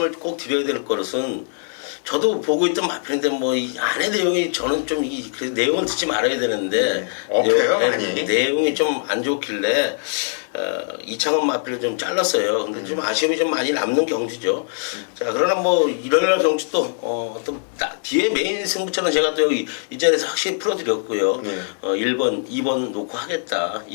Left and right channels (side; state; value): right; silent; digital silence